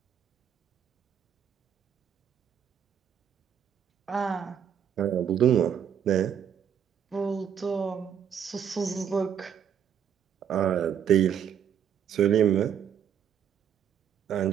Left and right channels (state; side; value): quieter; left; 8.6 dB